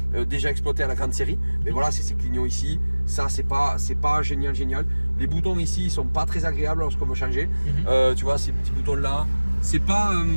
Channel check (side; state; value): both; inverted; correlation -1.00